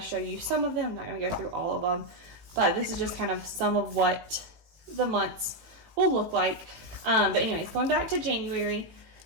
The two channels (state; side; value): late; left; 18 ms